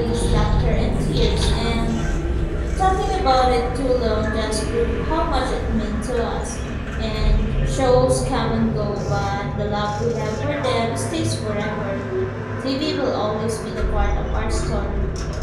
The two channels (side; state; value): both; identical; correlation 1.00